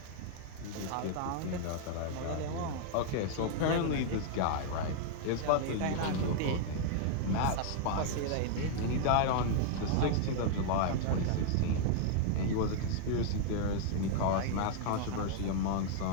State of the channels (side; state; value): both; different; correlation -0.01